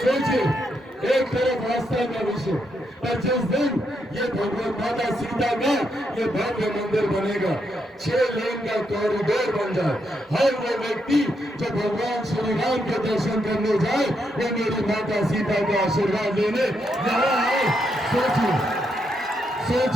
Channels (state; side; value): normal; both; correlation 0.79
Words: सोचिए, एक तरफ आस्था का विषय, पर जिस दिन ये भगवान माता सीता का ये भव्य मंदिर बनेगा, 6 लेन का कॉरिडोर बन जाए, हर वो व्यक्ति जो भगवान श्री राम के दर्शन करने जाए, वो मेरी माता सीता का आशीर्वाद लेने यहाँ आए।